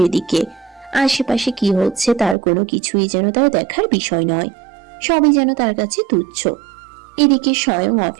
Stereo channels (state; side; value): drops out; left; at 2.4 s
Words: দিকে। আশেপাশে কি হচ্ছে তার কোনো কিছুই যেন তার দেখার বিষয় নয়। সবই যেন তার কাছে তুচ্ছ। এদিকে স্বয়ং